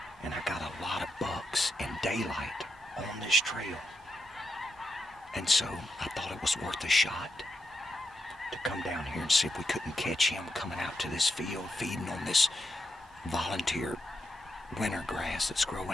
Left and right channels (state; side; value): normal; both; correlation 0.85